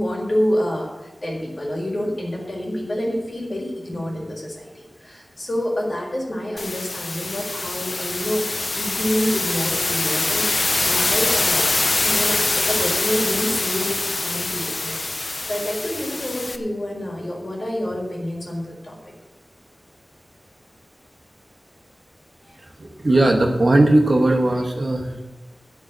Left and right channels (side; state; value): both; normal; correlation 0.96